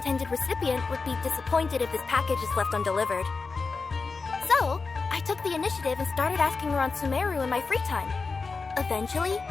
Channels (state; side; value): quieter; right; 4.4 dB